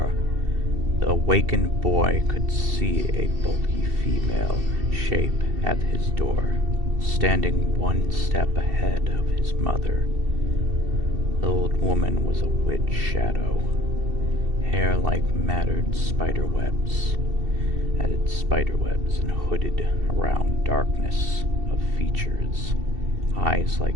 the awakened boy could see a bulky female shape at his door, standing one step ahead of his mother. The old woman was a witch shadow, hair like matted spiderwebs, added spiderwebs and hooded around darkness of features, eyes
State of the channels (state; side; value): late; left; 2.7 ms